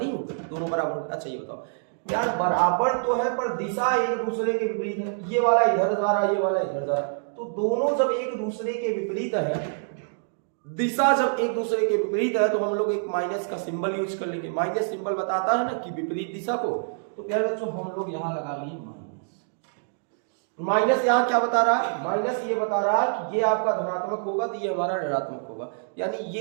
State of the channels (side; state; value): left; silent; digital silence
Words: होंगे, दोनों बराबर होंगे। अच्छा ये बताओ यार, बराबर तो है पर दिशा एक दूसरे के विपरीत है। ये वाला इधर जा रहा है, ये वाला इधर जा रहा है, तो दोनों जब एक दूसरे के विपरीत है, दिशा जब एक दूसरे के विपरीत है, तो हम लोग एक माइनस का सिंबल यूज कर लेंगे। माइनस सिंबल बताता है ना कि विपरीत दिशा को। तो प्यारे बच्चों हम लोग यहां लगा लिए माइनस। माइनस यहाँ क्या बता रहा है? माइनस ये बता रहा है कि ये आपका धनात्मक होगा तो ये हमारा ऋणात्मक होगा, यानी